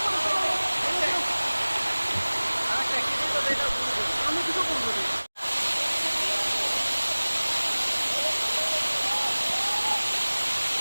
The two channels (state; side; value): inverted; both; correlation -1.00